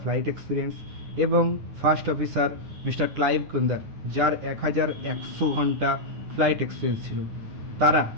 ফ্লাইট এক্সপিরিয়েন্স, এবং ফার্স্ট অফিসার মিস্টার ক্লাইভ কুন্দার, যার 1,100 ঘন্টা ফ্লাইট এক্সপিরিয়েন্স ছিল, তারা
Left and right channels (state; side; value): late; left; 9.4 ms